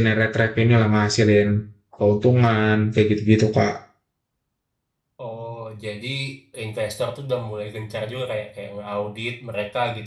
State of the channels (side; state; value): both; identical; correlation 1.00